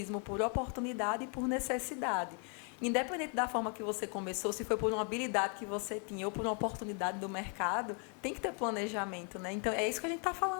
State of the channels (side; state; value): right; quieter; 38.8 dB